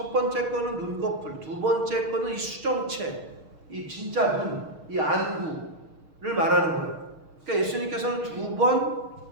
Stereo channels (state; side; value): late; left; 6.5 ms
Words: 번째 거는 눈꺼풀, 두 번째 거는 이 수정체, 이 진짜 눈, 이 안구를 말하는 거예요. 그러니까 예수님께서는 두 번